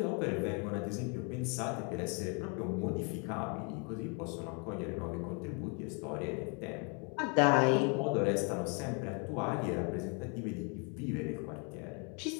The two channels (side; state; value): right; quieter; 35.8 dB